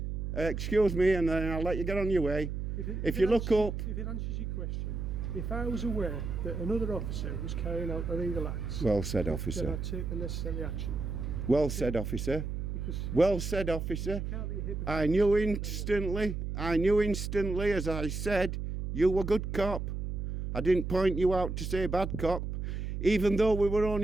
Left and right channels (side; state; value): right; noise; hum, 4 dB below the sound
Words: Excuse me, and then I'll let you get on your way. If you look up, If it answers your question, if I was aware that another officer was carrying out illegal acts, well said, then officer. I'd take the necessary action. Well said, officer. Because Well said, officer. you can't be a hypocrite. I knew instantly, as I said, you were good cop. I didn't point you out to say bad cop. Even though we were